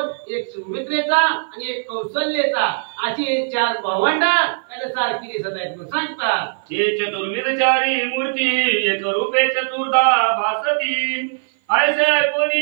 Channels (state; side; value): silent; left; 56 dB below the other